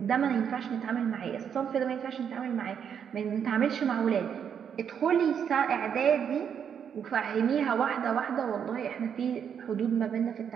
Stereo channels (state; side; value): quieter; left; 7.9 dB